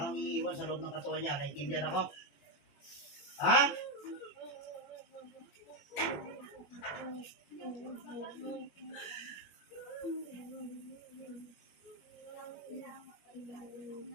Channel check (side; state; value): right; late; 21 ms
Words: kang iiwan sa loob ng katawan niya. Naintindihan ako? Ha?